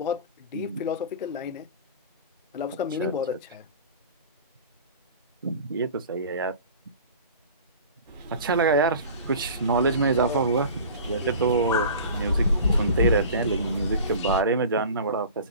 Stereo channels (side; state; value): both; inverted; correlation -0.40